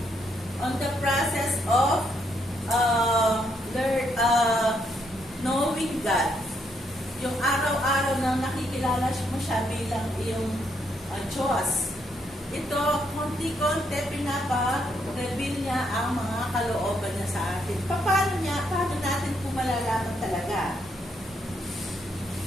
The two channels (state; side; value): normal; both; correlation 0.75